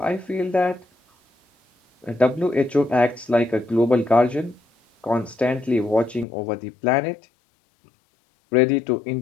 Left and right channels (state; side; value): drops out; right; at 6.2 s